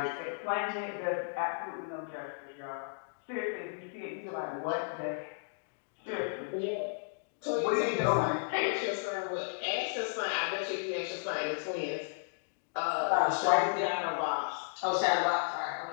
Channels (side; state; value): right; silent; digital silence